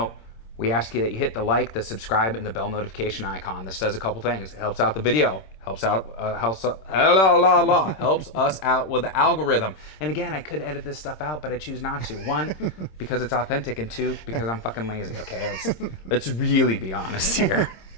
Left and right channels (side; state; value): right; late; 26 ms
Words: we ask you that you hit the like, the subscribe, and the bell notification icon. This does a couple things. It helps out the video, helps us out with the algorithm. And again, I could edit this stuff out, but I choose not to. One, because it's authentic, and two, because I'm fucking lazy. Okay, let's really be honest here.